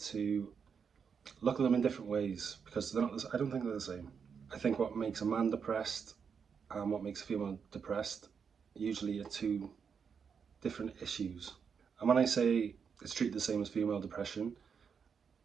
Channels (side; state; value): left; quieter; 6.5 dB